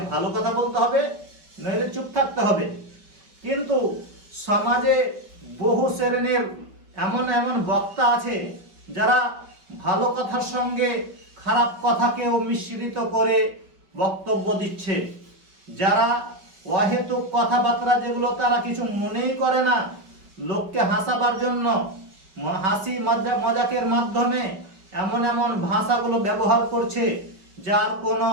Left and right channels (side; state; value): left; late; 5.3 ms